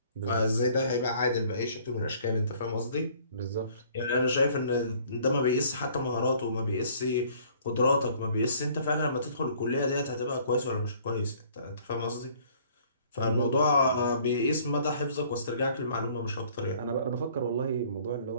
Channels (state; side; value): inverted; both; correlation -0.57